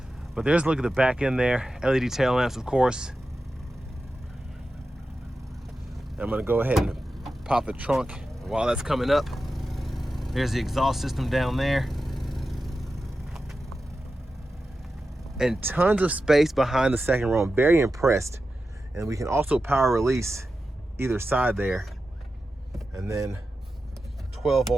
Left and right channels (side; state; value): both; normal; correlation 0.92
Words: But there's a look at the back end there. LED tail lamps, of course. I'm gonna go ahead and pop the trunk while that's coming up. There's the exhaust system down there. And tons of space behind the second row. I'm very impressed. And we can also power release either side there. And then 12